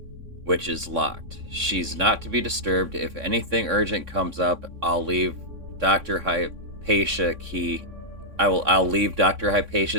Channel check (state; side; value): late; left; 3.6 ms